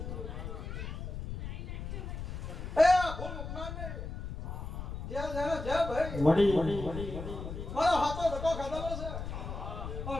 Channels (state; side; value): noise; left; rumble, 6 dB below the sound